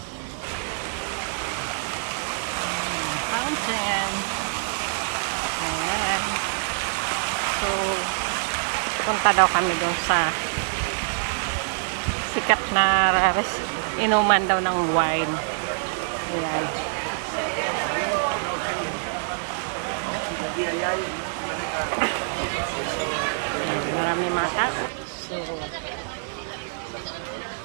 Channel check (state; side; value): silent; left; digital silence